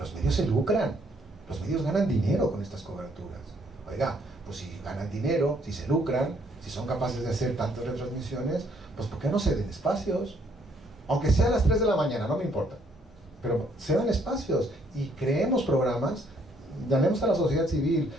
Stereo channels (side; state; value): both; normal; correlation 0.67